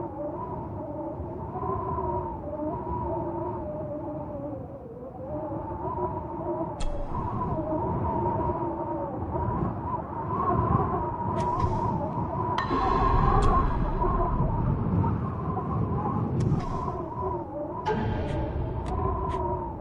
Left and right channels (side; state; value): both; identical; correlation 1.00